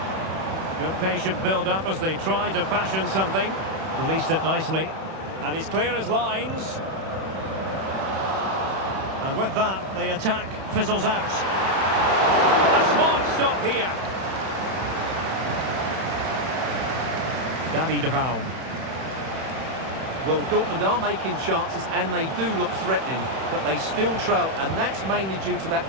Good patient build-up as they try to fashion something. Released it nicely. And he's clear as lines. And with that, the attack fizzles out. A smart stop here. David Raum. Well, Dortmund are making chances and they do look threatening, but they still trail, and that's mainly due to that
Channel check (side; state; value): left; late; 31 ms